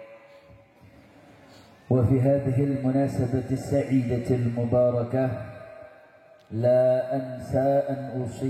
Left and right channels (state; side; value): identical; both; correlation 1.00